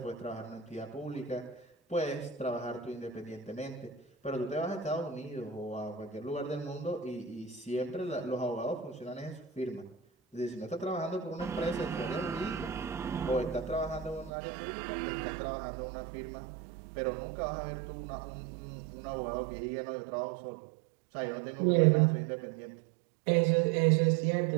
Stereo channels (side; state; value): left; drops out; at 14.3 s